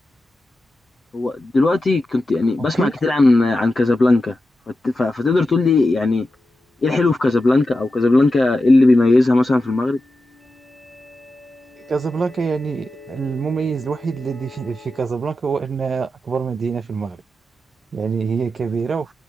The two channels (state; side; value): normal; both; correlation 0.91